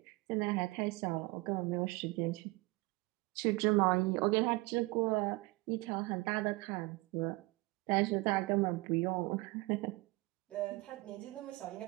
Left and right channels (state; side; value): quieter; left; 23.4 dB